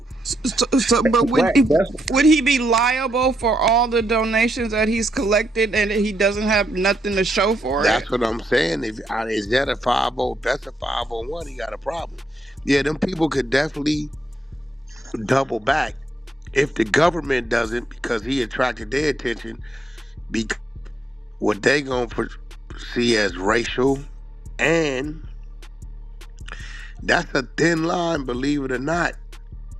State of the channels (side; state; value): both; normal; correlation 0.81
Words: But Right. That's would he be liable for all the donations that he's collected and he doesn't have nothing to show for it? That's what I'm saying. If is that a 50? That's a 501. He got a problem. Yeah, them people could definitely double back if the government doesn't, because he attracted their attention. Because what they gonna see as racial, and that's a thin line, believe it or not,